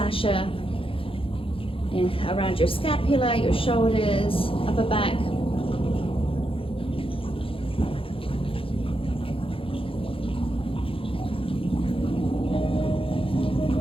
around your scapula, your shoulders, upper back.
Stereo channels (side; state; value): right; late; 0.26 ms